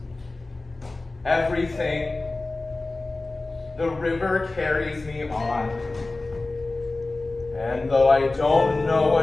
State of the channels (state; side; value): quieter; right; 3.2 dB